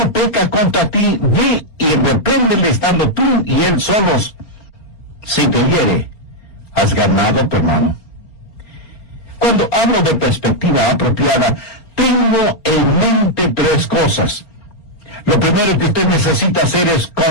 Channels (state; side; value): late; right; 4.3 ms